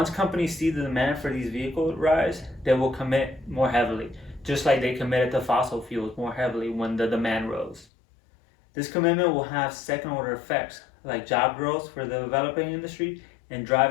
companies see the demand for these vehicles rise, they will commit more heavily, just like they committed to fossil fuels more heavily when the demand rose. This commitment will have second-order effects, like job growth for the developing industry and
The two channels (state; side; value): drops out; right; at 7.9 s